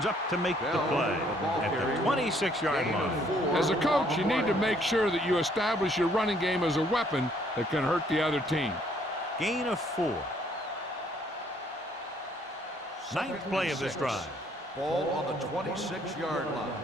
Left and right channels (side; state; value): both; normal; correlation 0.65